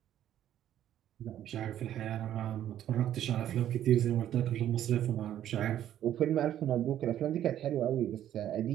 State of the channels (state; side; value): quieter; left; 11.4 dB